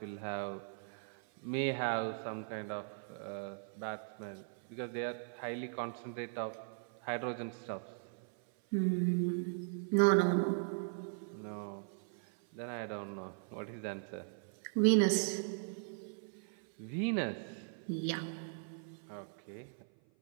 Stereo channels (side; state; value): left; silent; 52 dB below the other